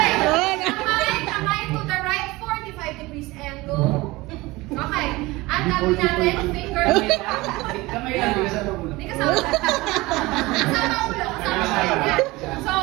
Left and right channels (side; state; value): left; quieter; 21.1 dB